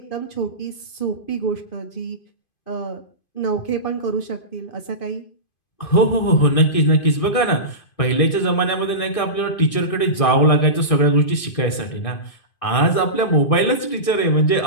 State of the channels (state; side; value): late; right; 2.5 ms